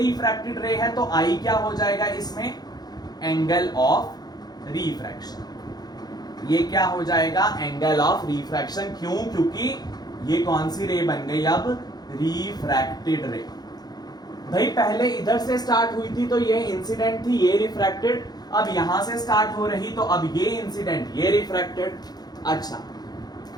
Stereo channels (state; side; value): late; right; 0.19 ms